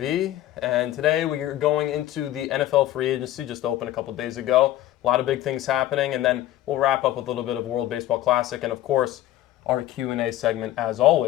and today we are going into the NFL free agency, just opened a couple days ago. A lot of big things happening, and then we'll wrap up with a little bit of World Baseball Classic, and of course, our Q&A segment as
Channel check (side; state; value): right; quieter; 13.9 dB